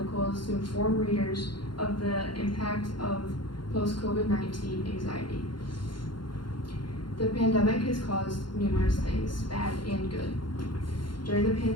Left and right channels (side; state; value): right; late; 0.72 ms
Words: is to inform readers of the impact of post-COVID-19 anxiety. The pandemic has caused numerous things, bad and good. During the